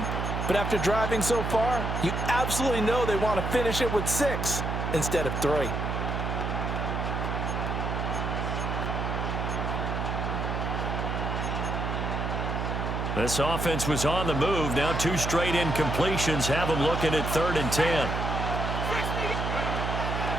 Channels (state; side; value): noise; right; hum, 2 dB below the sound